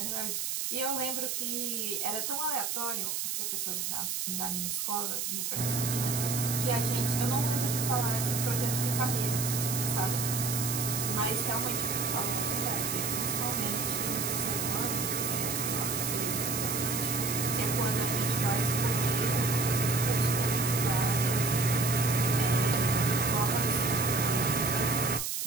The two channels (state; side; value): noise; right; hiss, 1 dB below the sound